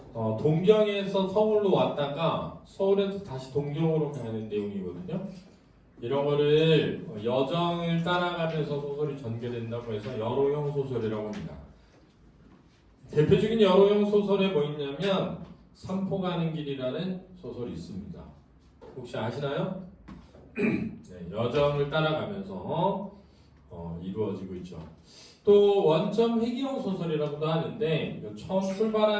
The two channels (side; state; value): both; identical; correlation 1.00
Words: 동경에서 서울로 왔다가 서울에서 다시 동경으로 가는 내용이거든요. 이런 거를 여정을 따라가면서 소설이 전개된다고 해서 여로형 소설이라고 합니다. 대표적인 여로형 소설에 뭐 있냐면 삼포 가는 길이라는 소설이 있습니다. 혹시 아시나요? 네, 여정을 따라가면서 이루어지고 있죠. 또 원점 회귀형 소설이라고도 하는데 처음